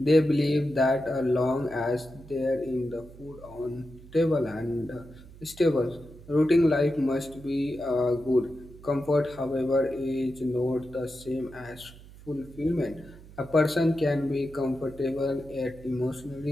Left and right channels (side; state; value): right; noise; hum, 19 dB below the sound